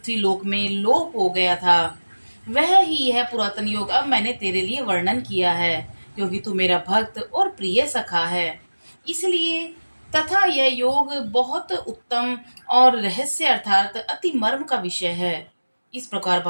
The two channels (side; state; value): both; inverted; correlation -1.00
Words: लोक में लोप हो गया था। वह ही यह पुरातन योग अब मैंने तेरे लिए वर्णन किया है, क्योंकि तू मेरा भक्त और प्रिय सखा है। इसलिए तथा यह योग बहुत उत्तम और रहस्य अर्थात अति मर्म का विषय है। इस प्रकार